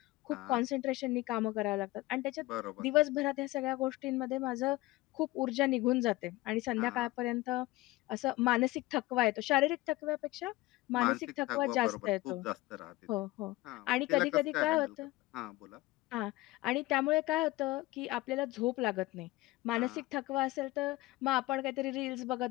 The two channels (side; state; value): right; quieter; 19.1 dB